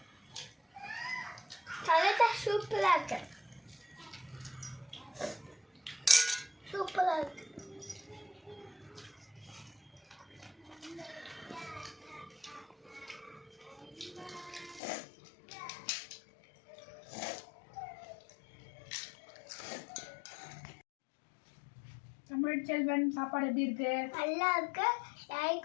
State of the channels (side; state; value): right; drops out; at 14.8 s